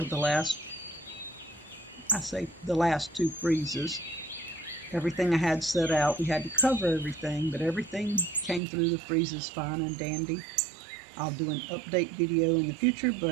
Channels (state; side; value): drops out; left; at 8.6 s